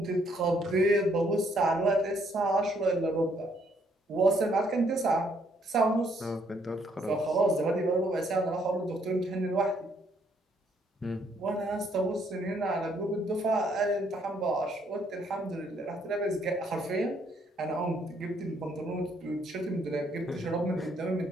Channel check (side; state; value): both; normal; correlation 0.69